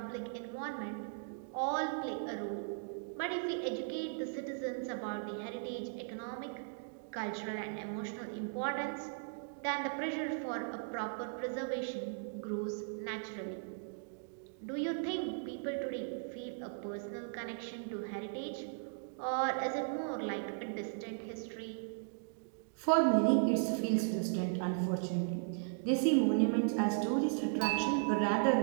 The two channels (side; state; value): left; silent; digital silence